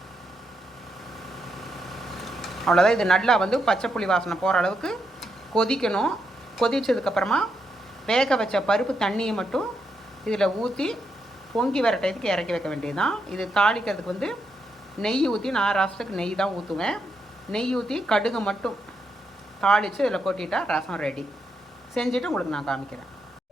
அவ்வளோதான். இது நல்லா பச்சை புளி வாசனை போகிற அளவுக்கு கொதிக்கணும். கொதித்ததுக்கப்புறமா வேக வச்ச பருப்பு தண்ணியை மட்டும் இதில் ஊற்றி பொங்கி வர டயத்துக்கு இறக்கி வைக்க வேண்டியது தான். இது தாளிக்கிறதுக்கு நெய் ஊற்றி, நான் ரசத்துக்கு நெய் தான் ஊற்றுவேன். நெய் ஊற்றி கடுகு மட்டும் தாளித்து இதில் கொட்டிட்டா ரசம் ரெடி. செஞ்சுட்டு உங்களுக்கு நான் காமிக்கிறேன்.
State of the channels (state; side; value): normal; both; correlation 0.81